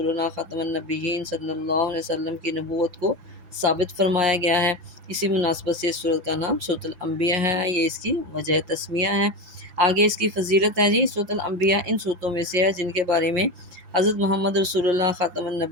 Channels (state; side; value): late; left; 5.9 ms